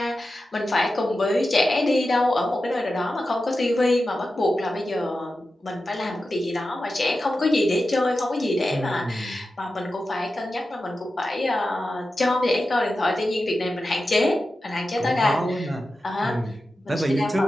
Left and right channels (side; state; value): both; normal; correlation 0.92